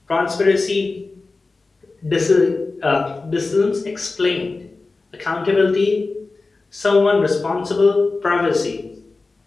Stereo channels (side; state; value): right; quieter; 3.7 dB